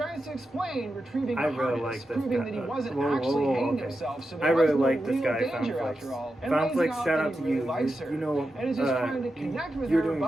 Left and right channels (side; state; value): both; normal; correlation 0.89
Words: to explain, retrieving I the really harness, like this proving guy. that he wasn't Whoa, actually whoa, hanging okay. himself, so I there really was no like this real guy, danger Foundflix. after all. And lays Foundflix, out shout that out he to really you. likes her, You know, and is just trying to you connect connect with You're her, doing a